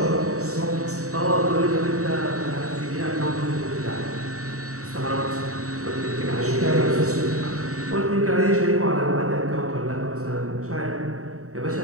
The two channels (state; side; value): late; left; 0.65 ms